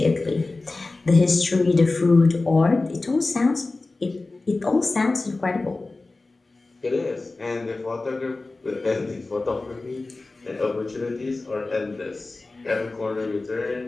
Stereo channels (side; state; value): right; quieter; 3.3 dB